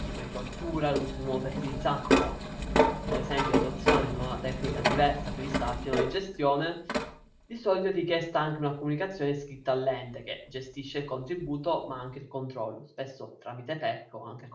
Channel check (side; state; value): both; identical; correlation 1.00